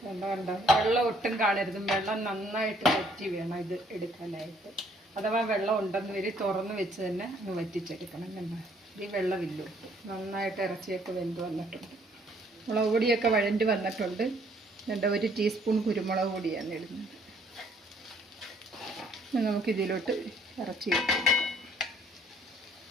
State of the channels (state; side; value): normal; both; correlation 0.63